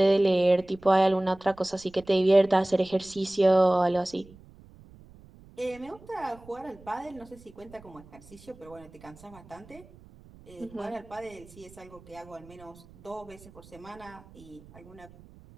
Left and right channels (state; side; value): noise; right; rumble, 22 dB below the sound